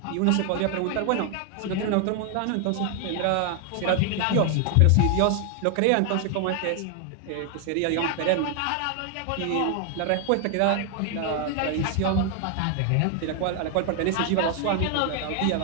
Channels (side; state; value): both; different; correlation 0.00